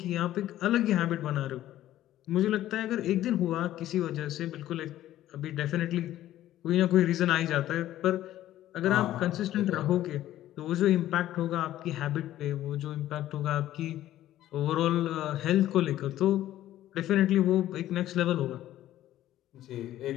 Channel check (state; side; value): quieter; right; 13.5 dB